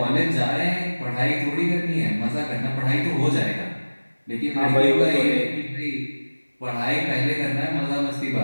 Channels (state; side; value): inverted; both; correlation -1.00